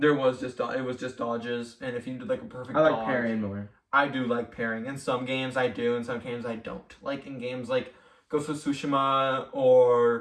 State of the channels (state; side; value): identical; both; correlation 1.00